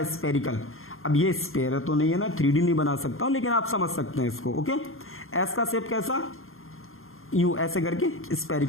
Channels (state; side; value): late; right; 0.61 ms